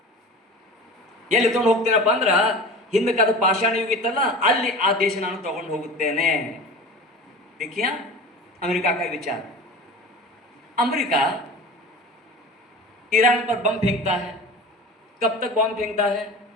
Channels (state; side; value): normal; both; correlation 0.35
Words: ಎಲ್ಲಿ ತಗೊಂಡು ಹೋಗ್ತೀನಪ್ಪ ಅಂದ್ರೆ, ಹಿಂದಕ್ಕೆ ಅದು ಪಾಷಾಣ ಯುಗ ಇತ್ತಲ್ಲ, ಅಲ್ಲಿ ಆ ದೇಶ ನಾನು ತಗೊಂಡು ಹೋಗುತ್ತೇನೆ. देखिए अमेरिका का विचार. अमेरिका ईरान पर बम फेंकता है. कब तक बम फेंकता है?